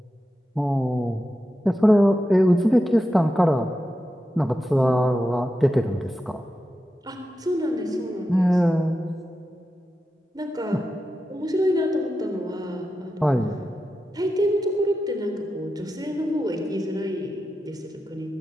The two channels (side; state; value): both; normal; correlation 0.90